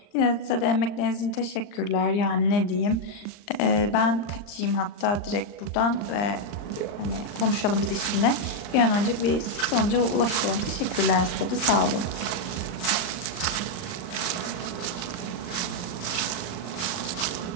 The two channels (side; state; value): right; late; 39 ms